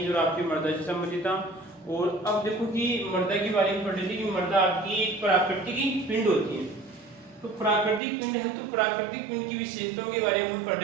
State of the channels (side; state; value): left; drops out; at 8.0 s